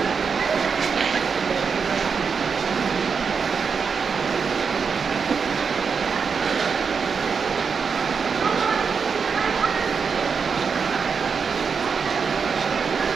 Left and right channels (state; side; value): quieter; left; 5.8 dB